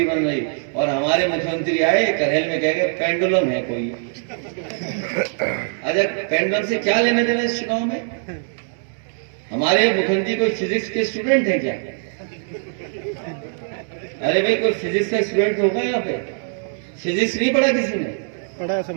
बन रही। और हमारे मुख्यमंत्री आए करहेल में कह गए पेंडुलम है कोई। अच्छा, पेंडुलम से क्या लेने देना इस चुनाव में? हमारे मुख्यमंत्री कोई फिजिक्स के स्टूडेंट है क्या? अरे भाई, कोई फिजिक्स का स्टूडेंट होगा यहाँ पे? फिजिक्स नहीं पढ़ा किसी ने? पढ़ा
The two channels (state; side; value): silent; left; 64 dB below the other